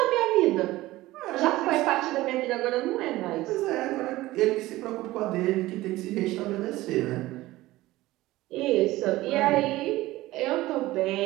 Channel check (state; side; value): quieter; left; 17.6 dB